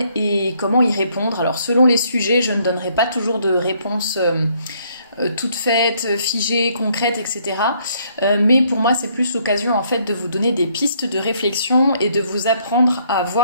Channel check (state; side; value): inverted; both; correlation -0.68